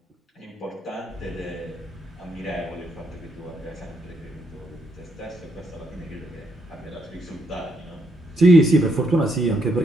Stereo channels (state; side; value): normal; both; correlation 0.76